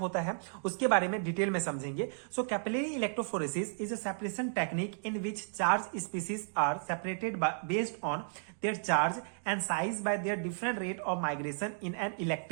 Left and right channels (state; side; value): silent; left; digital silence